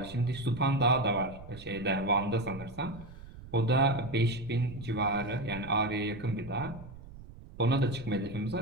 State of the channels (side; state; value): right; noise; rumble, 16 dB below the sound